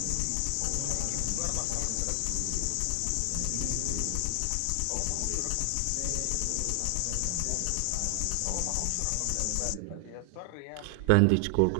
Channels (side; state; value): both; different; correlation 0.00